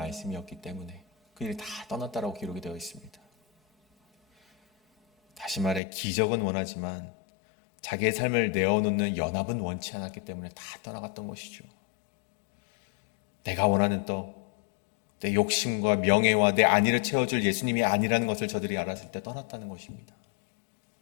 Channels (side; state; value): right; drops out; at 5.8 s